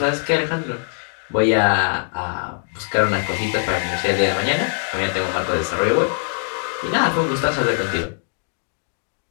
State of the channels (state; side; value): silent; right; 64 dB below the other